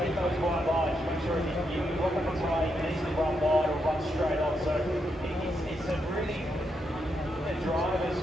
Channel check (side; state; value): both; normal; correlation 0.81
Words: those wide lines. Make sure you lock up the try, you can easily run wide or run straight on. So it's a really, the driver's